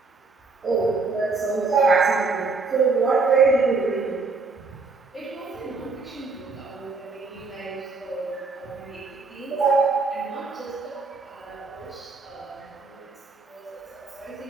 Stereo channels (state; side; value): quieter; left; 4.1 dB